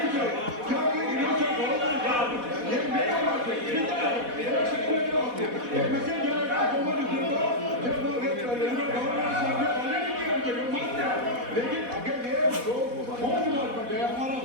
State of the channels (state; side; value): late; left; 4.1 ms